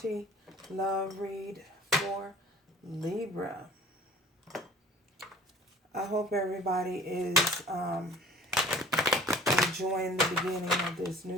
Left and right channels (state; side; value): normal; both; correlation 0.47